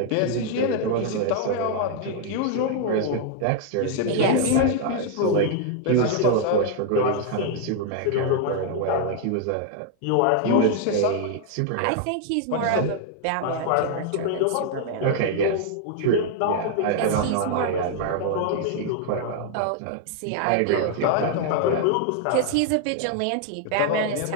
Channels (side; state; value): both; different; correlation 0.00